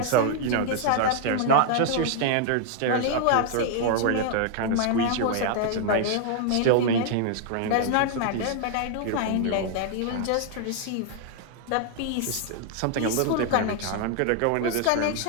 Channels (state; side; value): different; both; correlation 0.00